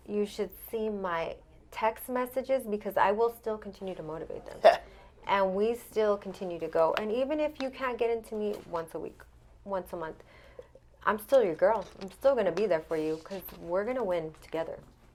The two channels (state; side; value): identical; both; correlation 1.00